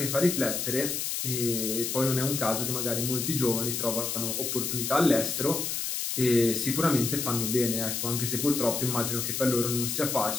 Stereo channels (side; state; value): left; noise; hiss, 2 dB below the sound